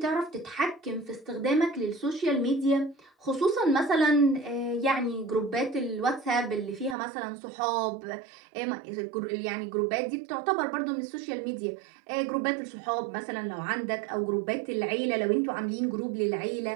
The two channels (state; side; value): drops out; left; at 7.0 s